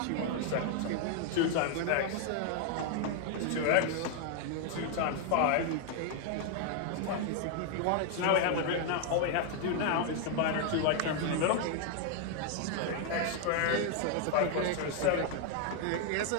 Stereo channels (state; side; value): different; both; correlation 0.00